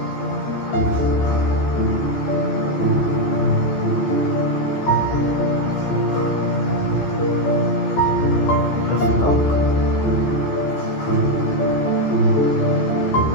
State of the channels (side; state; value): right; late; 15 ms